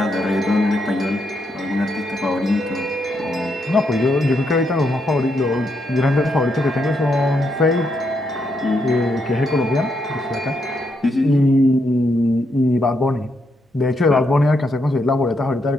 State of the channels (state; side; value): normal; both; correlation 0.79